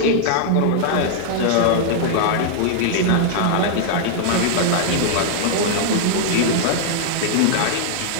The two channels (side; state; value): both; different; correlation -0.01